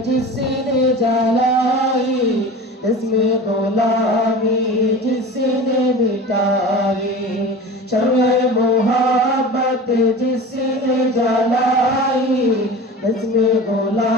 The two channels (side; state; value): both; normal; correlation 0.35